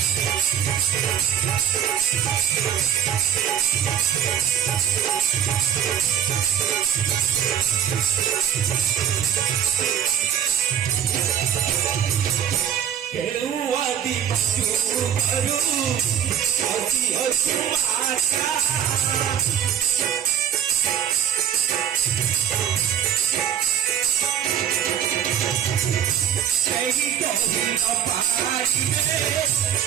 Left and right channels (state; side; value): quieter; left; 9.3 dB